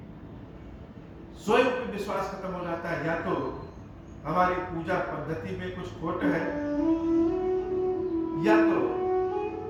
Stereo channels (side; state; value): both; identical; correlation 1.00